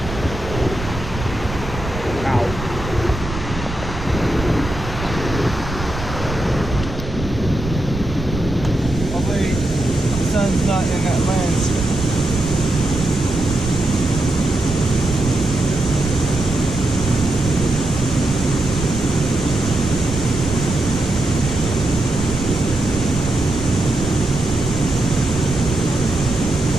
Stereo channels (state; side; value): noise; right; rumble, 8 dB below the sound